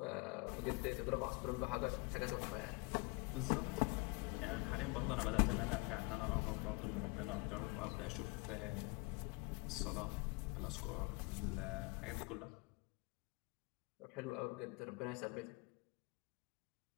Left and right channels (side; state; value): right; quieter; 27.9 dB